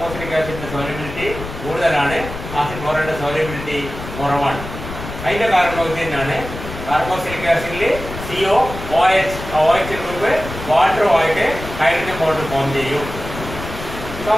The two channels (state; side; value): noise; left; rumble, 10 dB below the sound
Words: ആസിഡിന്റെ സോലിബിലിറ്റി കൂടുതലാണ്, ആസിഡ് ക്ലോറൈഡിന്റെ സോലിബിലിറ്റി കുറവാണ്. അതിന്റെ കാരണം ഇത് തന്നെയാണ്. കാർബോസിലിക് ആസിഡിൽ CO OH ഗ്രൂപ്പ് വാട്ടറുമായിട്ട് ഹൈഡ്രജൻ ബോണ്ട് ഫോം ചെയ്യും.